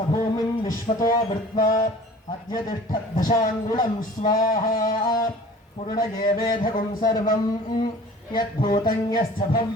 भूमिं विश्वतो वृत्वा अद्य तिष्ठद्दशाङ्गुलं स्वाहा पूर्णये वेधगुं सर्वं यद्भूतं यश्च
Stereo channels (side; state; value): both; normal; correlation 0.46